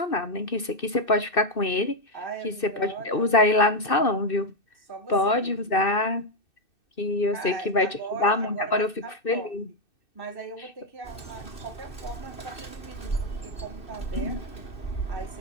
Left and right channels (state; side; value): late; right; 2.6 ms